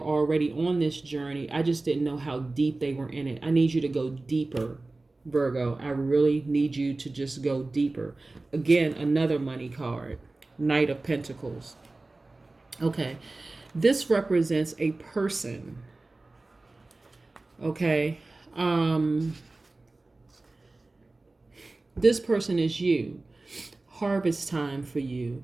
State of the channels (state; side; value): quieter; left; 3.2 dB